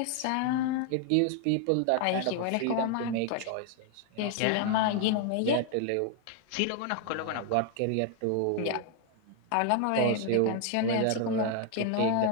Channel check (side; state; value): both; different; correlation 0.00